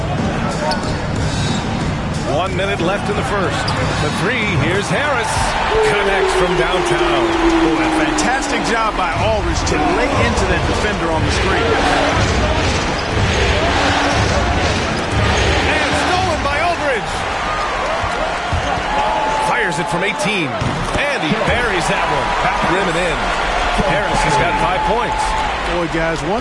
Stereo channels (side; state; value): both; identical; correlation 1.00